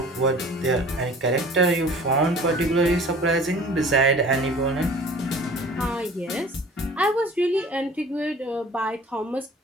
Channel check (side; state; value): both; normal; correlation 0.46